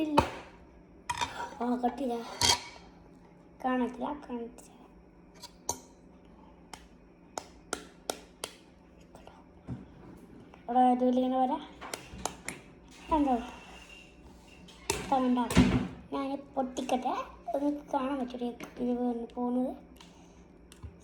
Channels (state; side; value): identical; both; correlation 1.00